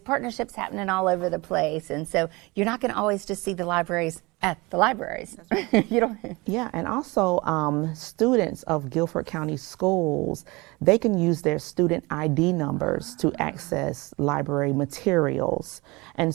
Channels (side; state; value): left; quieter; 24.2 dB